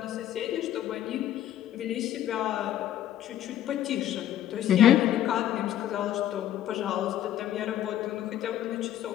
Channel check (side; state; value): right; quieter; 11.8 dB